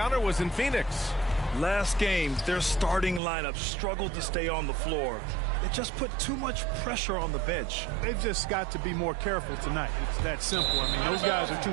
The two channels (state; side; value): drops out; left; at 3.2 s